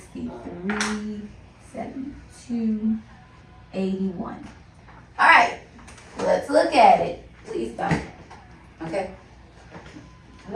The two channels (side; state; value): both; identical; correlation 1.00